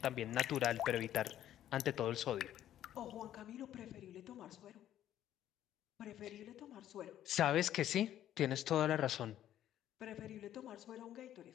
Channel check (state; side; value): quieter; right; 11.8 dB